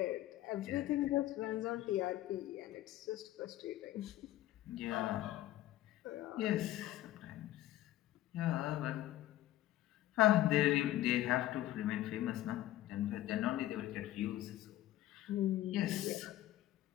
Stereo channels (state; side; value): quieter; right; 14.5 dB